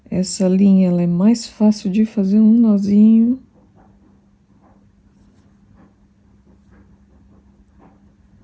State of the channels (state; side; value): identical; both; correlation 1.00